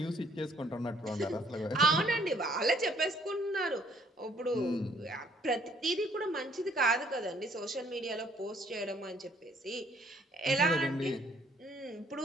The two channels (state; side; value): normal; both; correlation 0.63